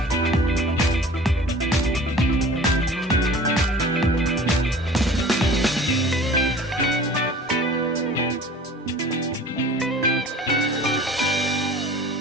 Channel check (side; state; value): both; normal; correlation 0.44